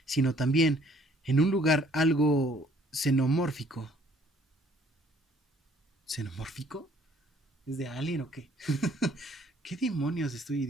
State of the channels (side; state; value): both; normal; correlation 0.60